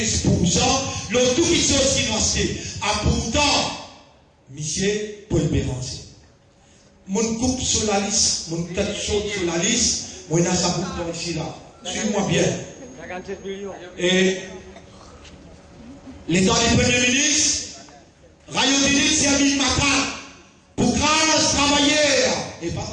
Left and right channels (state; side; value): identical; both; correlation 1.00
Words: l'autre tout qui sont aussi nous acheter. Ah pourtant, monsieur Paul Béranger, mon coupe sur la liste, mon tête chaude sur la liste, moi il y a ça pour ici là. Suis-moi bien. Et l'état du Premier ministre, Rayodini Servin Macan, pour grâce travailleurs, et pas